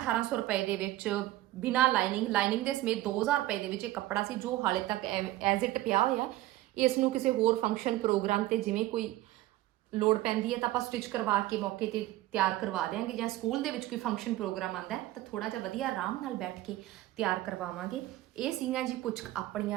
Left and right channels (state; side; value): quieter; left; 16.3 dB